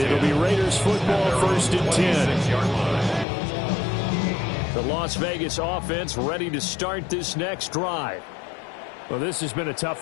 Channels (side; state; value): right; drops out; at 3.2 s